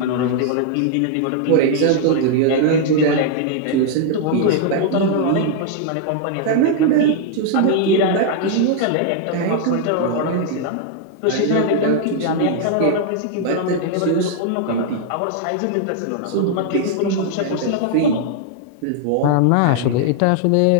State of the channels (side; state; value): both; different; correlation -0.01